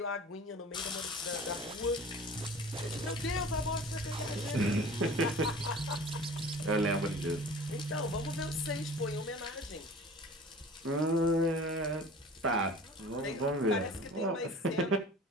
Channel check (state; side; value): normal; both; correlation 0.42